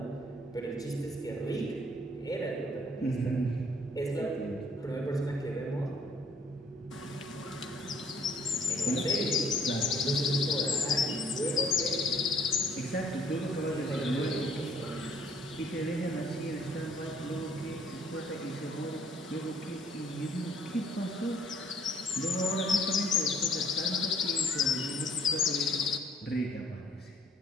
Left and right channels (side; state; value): both; normal; correlation 0.59